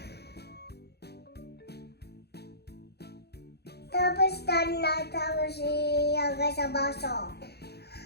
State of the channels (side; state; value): right; late; 0.48 ms